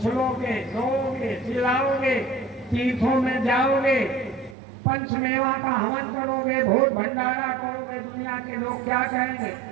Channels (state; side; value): drops out; left; at 4.5 s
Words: रोओगे, चिल्लाओगे, तीर्थों में जाओगे, पंचमेवा का हवन करोगे, भोज भंडारा करोगे, दुनिया के लोग क्या कहेंगे?